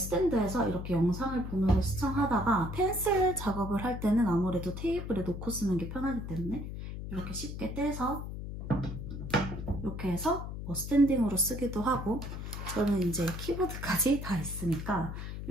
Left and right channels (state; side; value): noise; left; hum, 7 dB below the sound